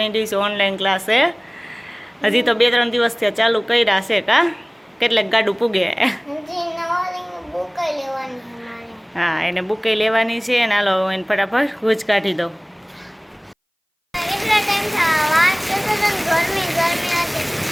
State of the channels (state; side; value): identical; both; correlation 1.00